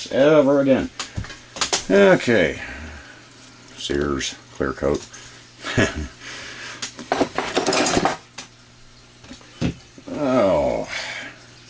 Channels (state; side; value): identical; both; correlation 1.00